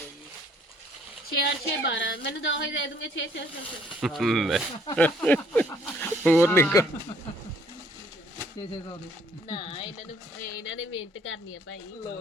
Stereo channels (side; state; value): both; normal; correlation 0.62